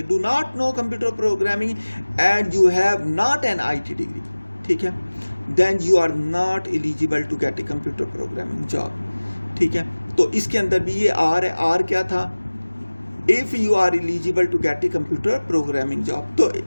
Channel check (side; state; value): both; inverted; correlation -1.00